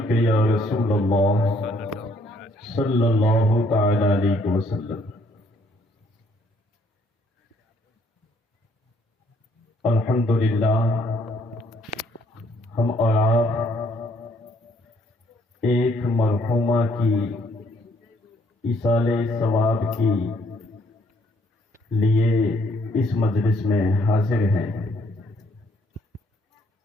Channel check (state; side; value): normal; both; correlation 0.67